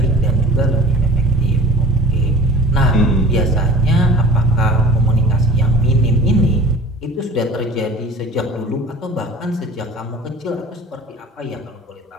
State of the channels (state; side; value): normal; both; correlation 0.44